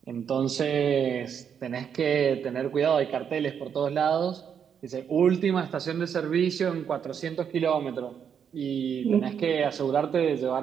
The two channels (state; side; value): quieter; left; 7.7 dB